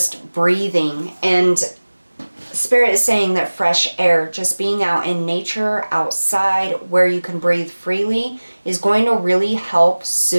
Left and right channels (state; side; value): inverted; both; correlation -1.00